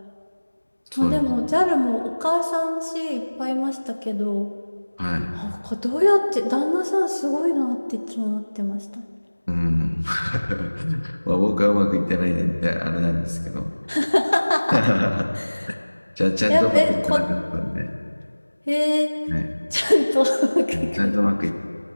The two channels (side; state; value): both; inverted; correlation -1.00